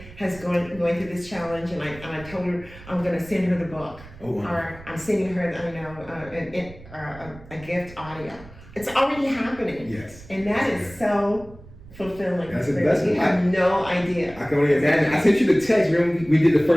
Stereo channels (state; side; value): noise; right; rumble, 19 dB below the sound